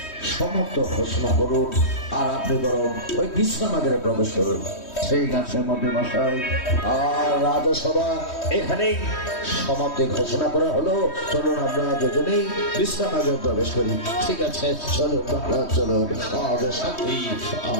সমাপ্ত ঘোষণা করুন, আর আপনি বরং ওই বিশ্রামাগারে প্রবেশ করুন। সেই গাছের মধ্যে মশাই, আর রাজসভা এখানেই সমাপ্তি ঘোষণা করা হলো। চলুন আমরা দুজনেই বিশ্রামাগারে প্রবেশ করি। ঠিক আছে, চলুন মহারাজ, চলুন।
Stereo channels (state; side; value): late; right; 3.1 ms